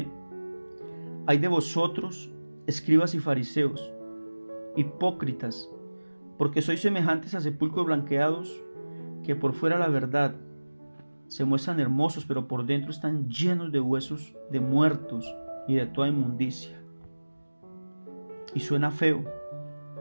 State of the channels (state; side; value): inverted; both; correlation -1.00